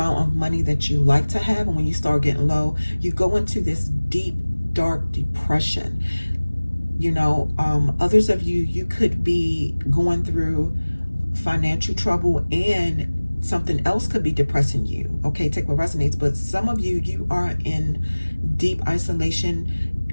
of money that you like to have, and when you start getting low, you go into this deep, dark depression. You know, others of you, you could be going through financial trouble, and something else could be depressing you. Okay, take what resonates. But some of you, you are in deep isolation.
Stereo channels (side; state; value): both; inverted; correlation -1.00